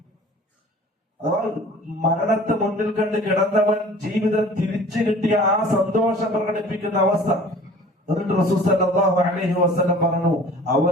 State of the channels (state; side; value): normal; both; correlation 0.47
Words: അഥവാ മരണത്തെ മുന്നിൽ കണ്ട് കിടന്നവൻ ജീവിതം തിരിച്ചു കിട്ടിയ ആ സന്തോഷം പ്രകടിപ്പിക്കുന്ന അവസ്ഥ. എന്നിട്ട് റസൂൽ സല്ലല്ലാഹു അലൈഹി വസല്ലം പറഞ്ഞു,